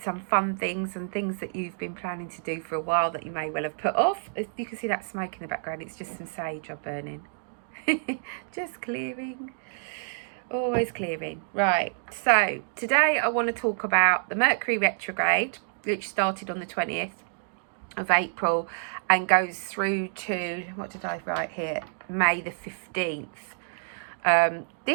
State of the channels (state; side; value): silent; left; digital silence